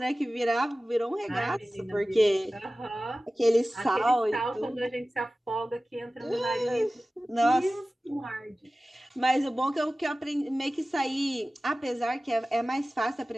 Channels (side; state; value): both; normal; correlation 0.96